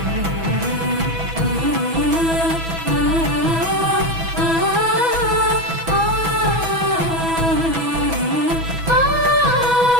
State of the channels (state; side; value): late; left; 6.1 ms